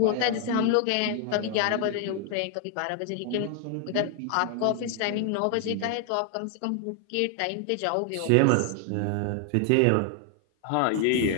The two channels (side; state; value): both; different; correlation 0.00